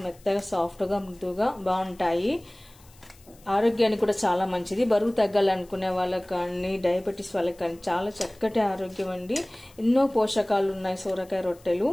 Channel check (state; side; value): noise; left; hiss, 27 dB below the sound